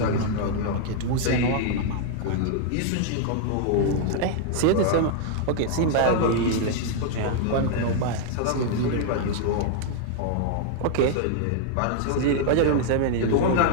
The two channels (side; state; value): both; different; correlation -0.01